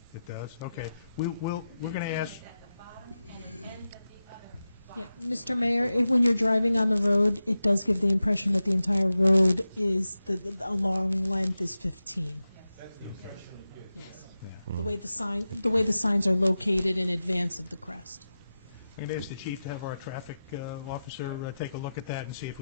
It does? Okay. We're going to ask... Yeah, Mr. Mayor, when you're driving on the road, it does give the impression that the entire road is, a long length is 15. Yes. Yeah. The way the signs are located in advance of the crest. I'm going to ask the chief to have our traffic officer take a look at that and see if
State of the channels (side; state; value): both; inverted; correlation -0.93